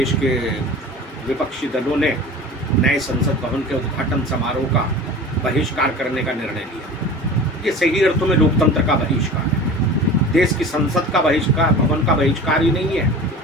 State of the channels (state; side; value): normal; both; correlation 0.37